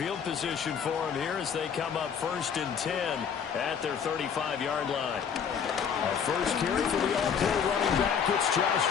position for them here as they come up 1st and 10 at their 35-yard line. A first carry for the all-pro running back. It's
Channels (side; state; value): right; quieter; 7.2 dB